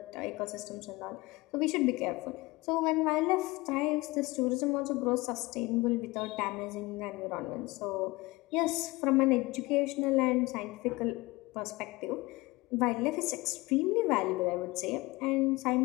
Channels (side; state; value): right; quieter; 22.0 dB